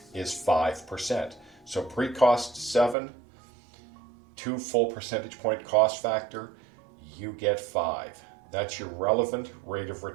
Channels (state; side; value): drops out; left; at 3.0 s